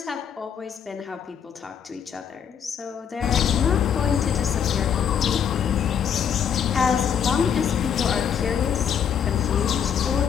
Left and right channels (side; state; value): right; quieter; 8.0 dB